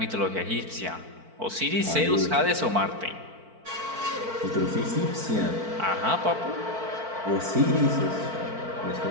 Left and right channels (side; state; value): left; late; 4.5 ms